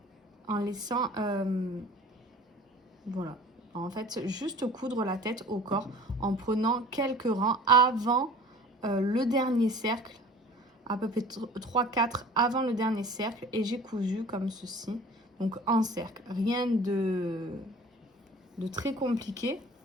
en laissant, voilà, en fait, juste coudre la tête au corps en prenant quelques rangs avant le dernier cercle, à peu près 3-4 avant le dernier cercle, et j'ai cousu comme ceci, donc en cercle, rien de très compliqué.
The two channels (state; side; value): normal; both; correlation 0.45